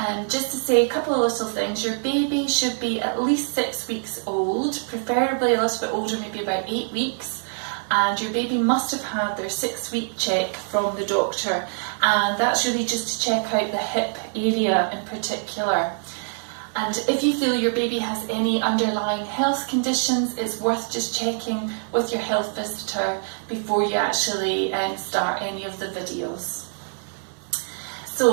just to say a couple of little things. Your baby should be at least 6 weeks old, preferably a little bit older, maybe about 8 weeks. And your baby must have had their 6-week check from the doctor. And that's really just to check out the hip area in particular. And if you feel your baby has any underlying health conditions, it's worth just checking with your health visitor before you actually start any of the videos.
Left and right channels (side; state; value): left; silent; 62 dB below the other